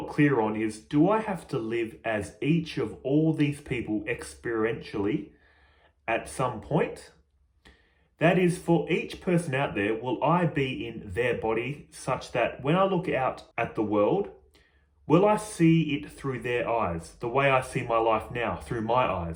clear on is, do I have to live as each of all these people experientially at some point? That is, for each person out there, will I be in their body such that when I look out at the world, will I see it through their eyes, the way I see my life now, through my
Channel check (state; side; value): identical; both; correlation 1.00